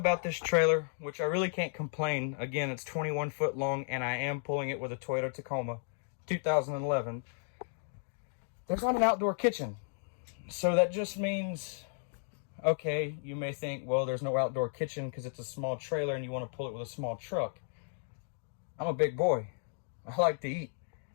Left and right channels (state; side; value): silent; right; digital silence